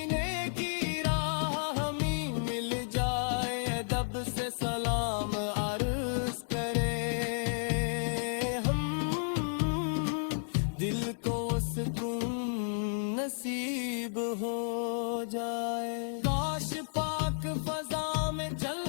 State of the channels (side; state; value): right; silent; digital silence